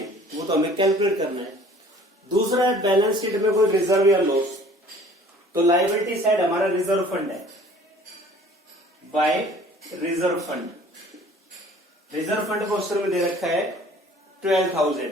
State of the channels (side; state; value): both; normal; correlation 0.51